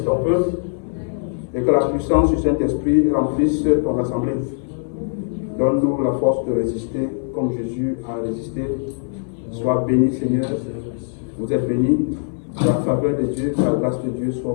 ton peuple, et que la puissance du Saint-Esprit remplisse ton assemblée. Donne-nous la force de résister comme Jésus a résisté. Sois béni, Seigneur. Vous êtes bénis. La faveur de Dieu, la grâce de Dieu soit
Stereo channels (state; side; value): silent; right; digital silence